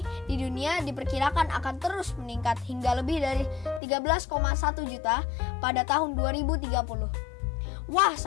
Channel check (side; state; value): right; drops out; at 3.8 s